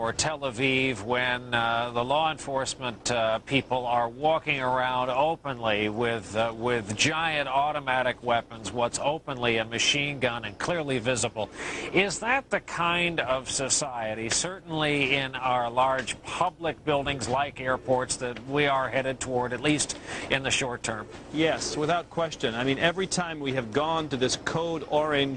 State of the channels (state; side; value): identical; both; correlation 1.00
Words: Tel Aviv when the law enforcement people are walking around openly with giant automatic weapons, what's openly a machine gun and clearly visible. Is that the kind of society, certainly in our large public buildings like airports, that we are headed toward, at least in the short term? Yes, without question. I mean, every time we have gone to this code